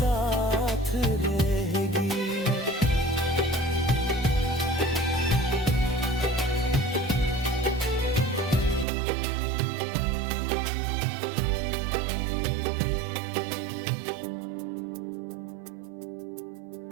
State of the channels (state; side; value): drops out; left; at 8.8 s